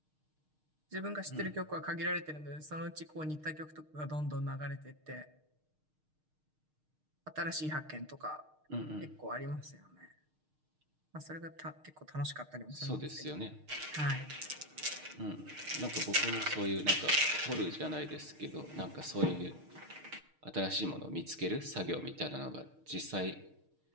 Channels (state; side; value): late; left; 6.5 ms